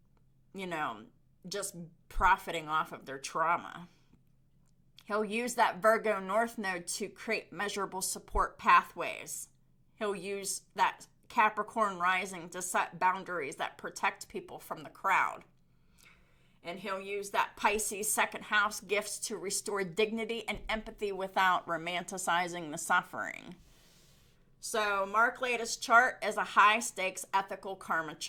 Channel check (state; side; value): identical; both; correlation 1.00